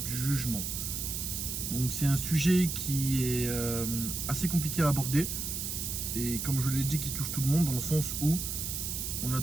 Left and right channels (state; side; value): noise; right; hiss, 3 dB below the sound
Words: du jugement. Donc c'est un sujet qui est assez compliqué à aborder et comme je l'ai dit qui touche tout le monde dans le sens où on a